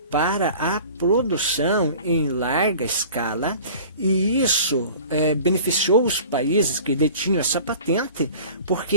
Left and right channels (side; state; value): both; inverted; correlation -0.43